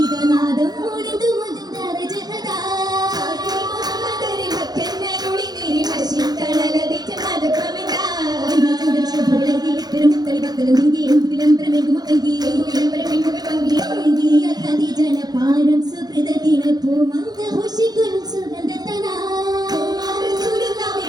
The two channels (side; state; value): left; late; 0.19 ms